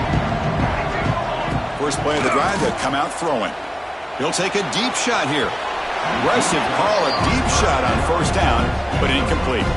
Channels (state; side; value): identical; both; correlation 1.00